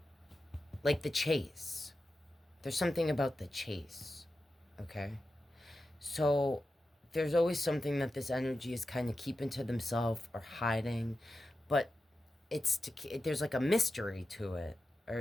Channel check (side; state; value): both; normal; correlation 0.92